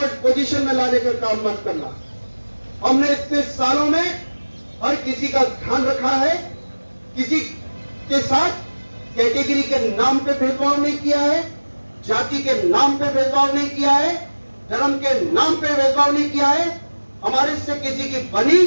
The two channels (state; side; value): inverted; both; correlation -1.00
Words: पोजीशन में लाने का काम मत करना। हमने इतने सालों में हर किसी का ध्यान रखा है, किसी के साथ कैटेगरी के नाम पे भेदभाव नहीं किया है, जाति के नाम पे भेदभाव नहीं किया है, धर्म के नाम पे भेदभाव नहीं किया है। हमारे से किसी की बनी